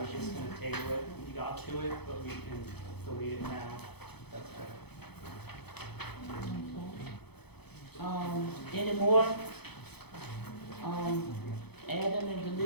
just going to table it when we got to it, but we can delete it now. That's better. Any more adding and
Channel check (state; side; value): late; right; 0.98 ms